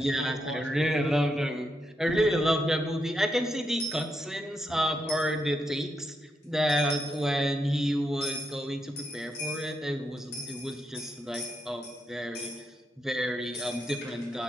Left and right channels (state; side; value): normal; both; correlation 0.82